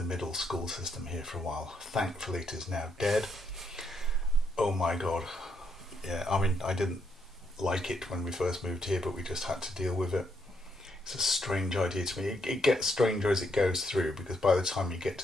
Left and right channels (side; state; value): both; normal; correlation 0.76